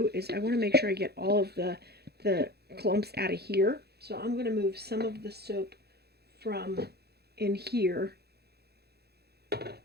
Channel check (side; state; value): left; late; 0.47 ms